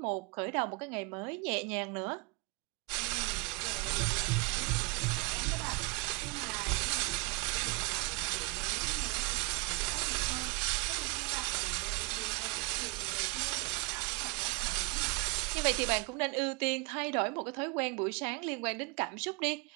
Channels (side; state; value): left; quieter; 26.5 dB